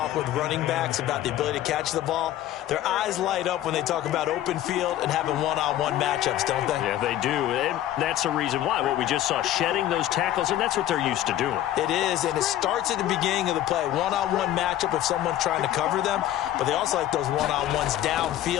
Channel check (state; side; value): quieter; right; 12.9 dB